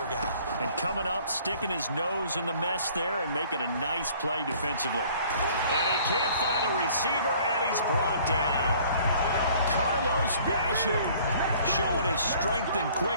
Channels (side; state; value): both; inverted; correlation -0.55